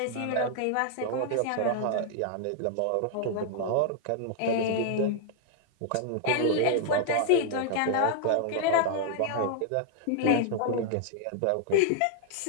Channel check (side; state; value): both; different; correlation -0.01